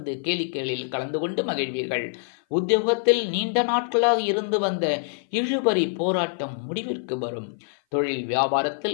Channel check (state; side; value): silent; right; 57 dB below the other